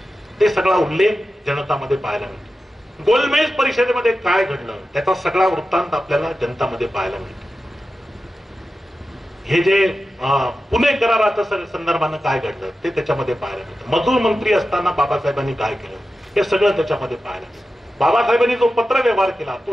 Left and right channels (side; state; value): both; normal; correlation 0.92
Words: ते सगळा उल्लेख जनतामध्ये पाहायला मिळतो. गोलमेज परिषदेमध्ये काय घडलं त्याचा सगळा वृत्तांत आपल्याला जनतामध्ये पाहायला मिळतो. हे जे पुणे कराराच्या संदर्भानं काय घडलं ते त्याच्यामध्ये पाहायला मिळतं. मजूर मंत्री असताना बाबासाहेबांनी काय केलं हे सगळं त्याच्यामध्ये पाहायला मिळतं. बाबासाहेबांनी जो पत्र व्यवहार केला